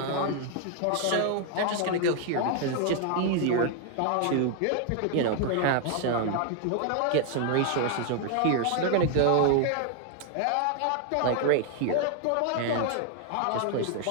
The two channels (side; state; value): both; different; correlation 0.00